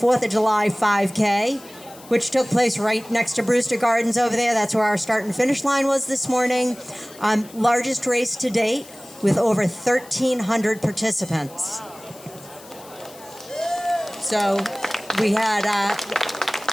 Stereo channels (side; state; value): left; noise; hiss, 21 dB below the sound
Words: of July 5K, which took place right next to Brewster Gardens over there. That's where our start and finish line was this morning. Largest race to date with over 1,300 participants. So we had